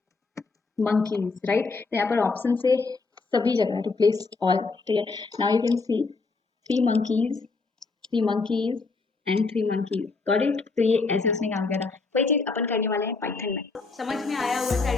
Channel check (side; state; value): right; quieter; 4.1 dB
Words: मंकीज, राइट। तो यहाँ पर ऑप्शन से सभी जगह रिप्लेस ऑल, ठीक है। Now you can C 3 monkeys, 3 monkeys and 3 monkeys, got it. तो ये ऐसे उसने काम किया था। वही चीज अपन करने वाले हैं पाइथन में। समझ में आया हुआ सारी